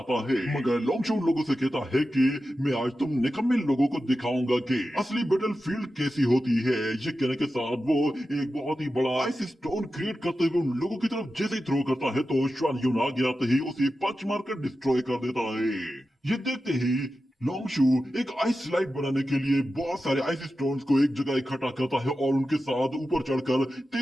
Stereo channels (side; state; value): both; normal; correlation 0.92